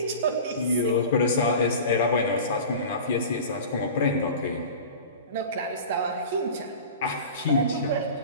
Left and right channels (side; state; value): both; inverted; correlation -0.36